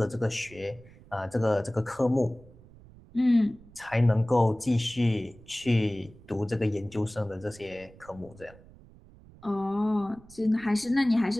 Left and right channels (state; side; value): noise; right; rumble, 22 dB below the sound